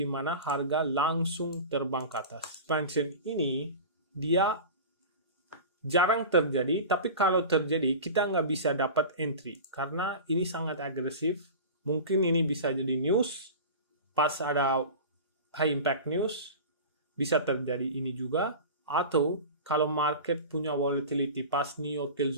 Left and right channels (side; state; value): both; inverted; correlation -0.33